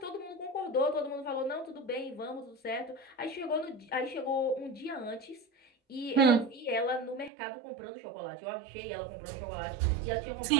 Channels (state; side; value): drops out; left; at 7.3 s